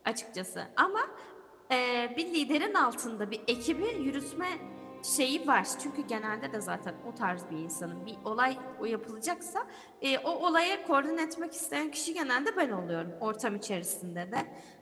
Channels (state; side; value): identical; both; correlation 1.00